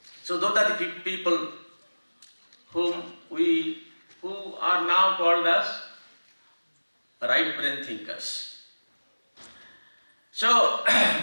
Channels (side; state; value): both; inverted; correlation -1.00